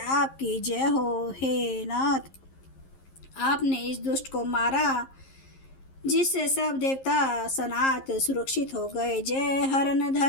जय हो। हे नाथ, आपने इस दुष्ट को मारा जिससे सब देवता सनात सुरक्षित हो गए। जय हरन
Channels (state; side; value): late; right; 11 ms